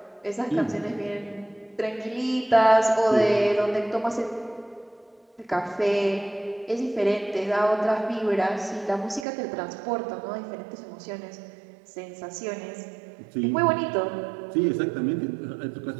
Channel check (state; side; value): drops out; left; at 9.2 s